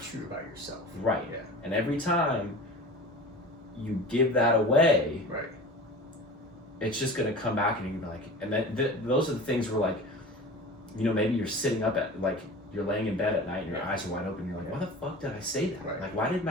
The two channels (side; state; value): both; normal; correlation 0.36